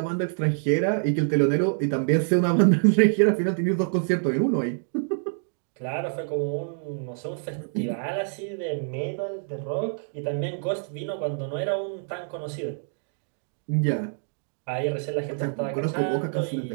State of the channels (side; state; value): left; silent; digital silence